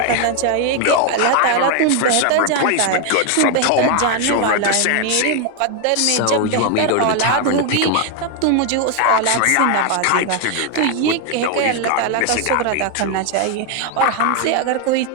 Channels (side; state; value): both; different; correlation 0.01